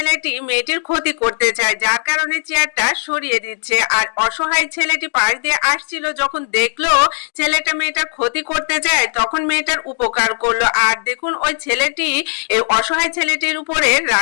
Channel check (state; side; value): silent; right; 58 dB below the other